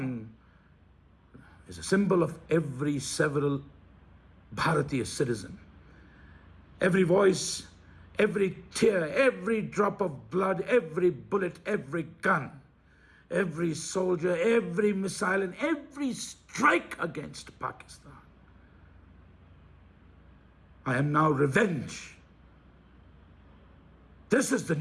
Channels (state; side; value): identical; both; correlation 1.00